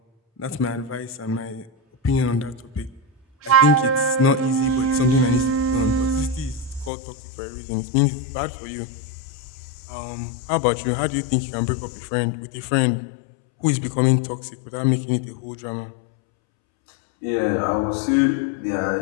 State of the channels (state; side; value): drops out; right; at 6.9 s